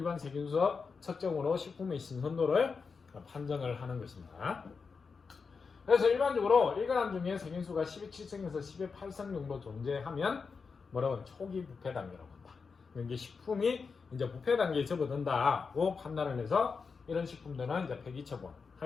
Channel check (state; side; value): quieter; right; 5.1 dB